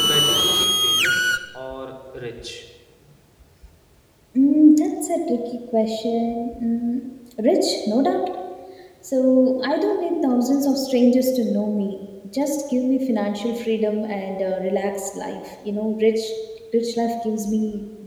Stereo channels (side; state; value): both; identical; correlation 1.00